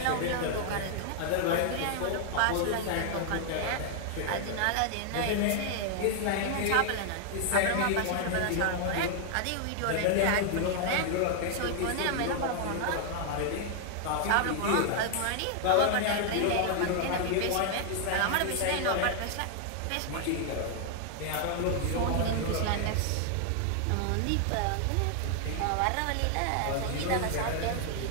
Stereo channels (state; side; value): different; both; correlation 0.00